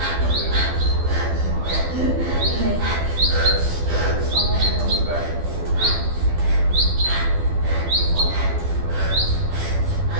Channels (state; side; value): late; left; 12 ms